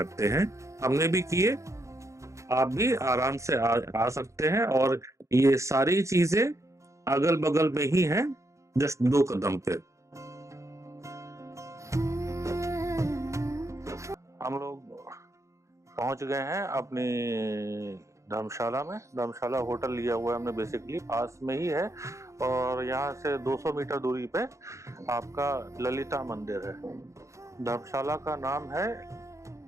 हैं। हमने भी किए, आप भी आराम से आ सकते हैं। और ये सारी चीजें अगल बगल में ही हैं, जस्ट 2 कदम पे। हम लोग पहुंच गए हैं अपनी धर्मशाला में। धर्मशाला होटल लिया हुआ है हमने, बेसिकली पास में ही है, और यहाँ से 200 मीटर दूरी पे आपका ललिता मंदिर है। धर्मशाला का नाम है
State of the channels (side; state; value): left; late; 0.15 ms